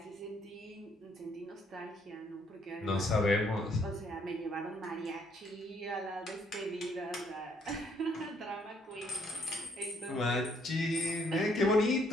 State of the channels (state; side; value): normal; both; correlation 0.68